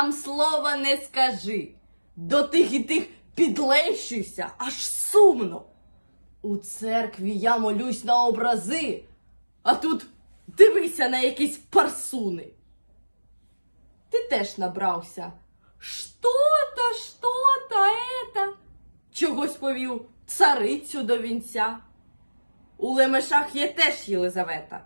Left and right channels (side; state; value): both; inverted; correlation -1.00